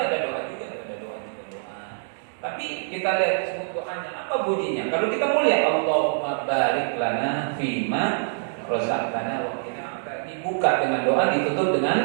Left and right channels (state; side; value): silent; left; digital silence